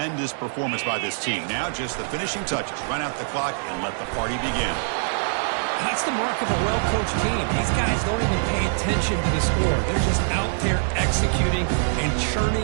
performance by this team. Now just the finishing touches. Run out the clock and let the party begin. That's the mark of a well-coached team. These guys don't even pay attention to the score. They're just out there executing and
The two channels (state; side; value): silent; left; 63 dB below the other